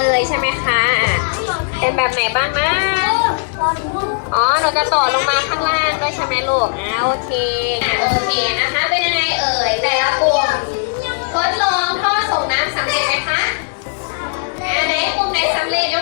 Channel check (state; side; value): silent; right; digital silence